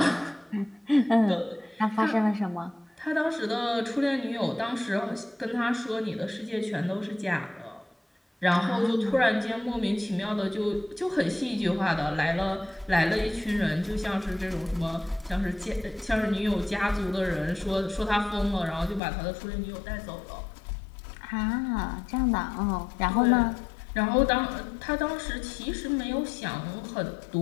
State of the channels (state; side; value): drops out; right; at 19.0 s